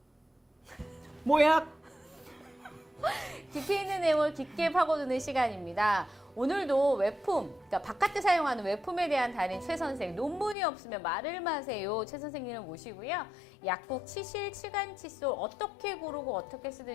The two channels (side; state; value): right; drops out; at 10.6 s